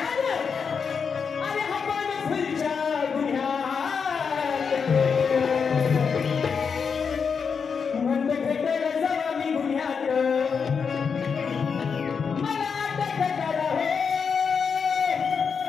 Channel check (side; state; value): right; quieter; 6.0 dB